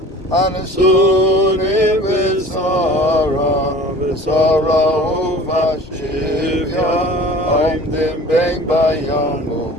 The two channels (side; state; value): both; normal; correlation 0.44